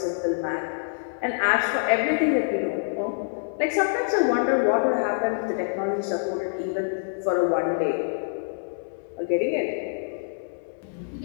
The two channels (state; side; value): silent; right; digital silence